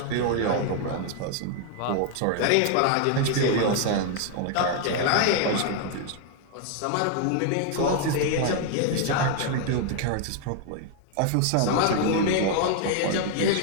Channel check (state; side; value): different; both; correlation 0.00